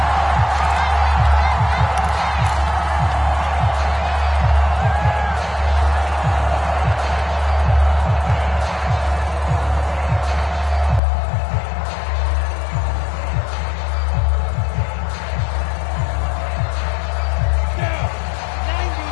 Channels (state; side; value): drops out; right; at 11.0 s